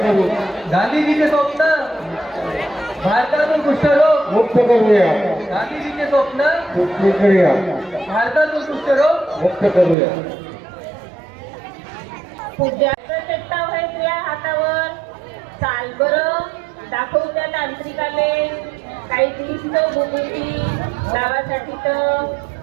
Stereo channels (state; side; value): drops out; left; at 10.0 s